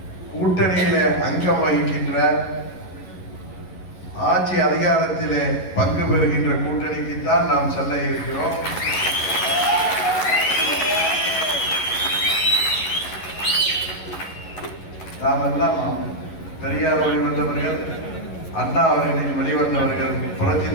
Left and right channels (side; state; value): right; late; 11 ms